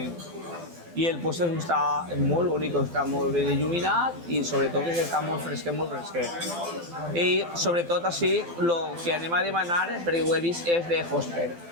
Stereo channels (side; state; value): left; late; 12 ms